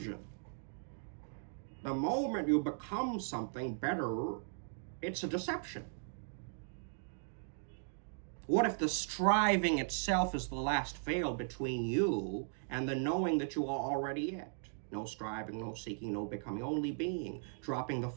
The moment you become something better, it's a deception. What if the striving itself is the last veil between you and the knowing that you are already it? No striving, no seeking, no becoming, only being. Dropping the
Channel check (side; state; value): left; silent; digital silence